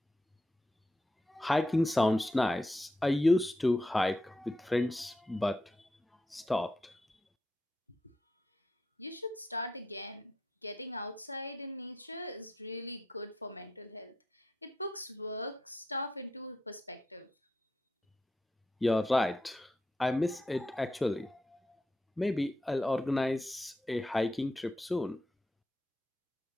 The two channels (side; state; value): both; normal; correlation 0.84